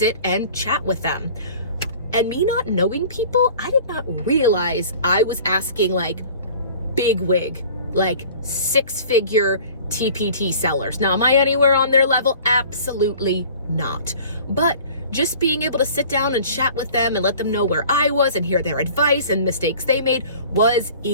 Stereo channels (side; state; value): both; inverted; correlation -0.46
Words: and chat with them. And me not knowing people, I did not realize I was asking big wig, 6-figure TpT sellers. Now, am I anywhere on their level? Absolutely not. But just being able to sit down and chat with them and let them know where I was and hear their advice and mistakes they made was